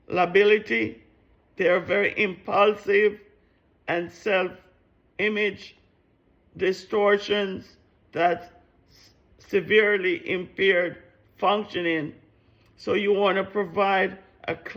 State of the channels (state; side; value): identical; both; correlation 1.00